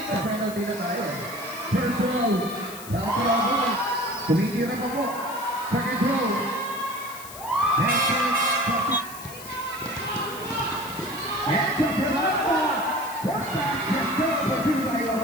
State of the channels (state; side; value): noise; left; hiss, 14 dB below the sound